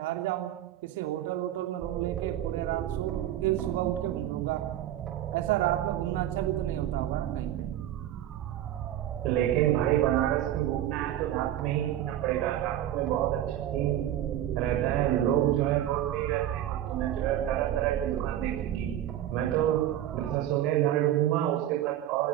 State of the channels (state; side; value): quieter; left; 12.3 dB